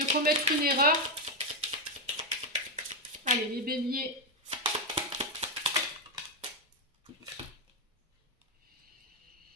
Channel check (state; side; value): normal; both; correlation 0.05